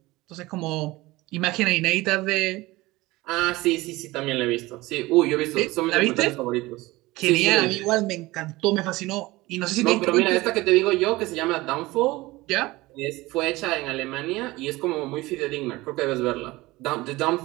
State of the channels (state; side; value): quieter; left; 20.1 dB